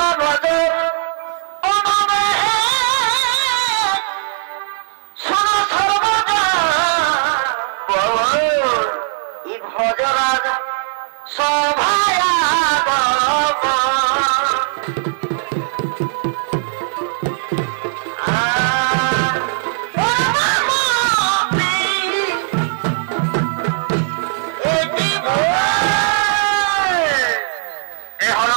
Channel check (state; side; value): silent; left; 67 dB below the other